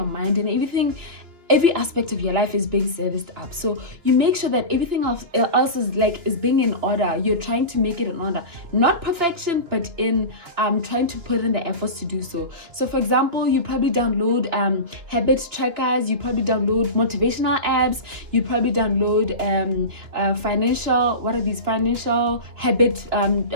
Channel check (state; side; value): late; left; 2.8 ms